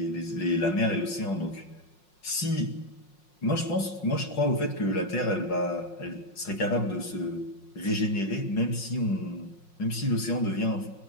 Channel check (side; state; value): right; late; 5.5 ms